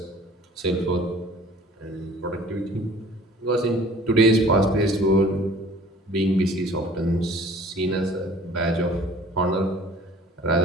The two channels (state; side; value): normal; both; correlation 0.50